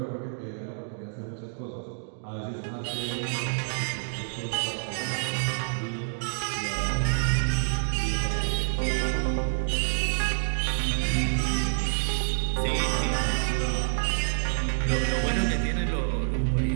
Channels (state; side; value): silent; left; digital silence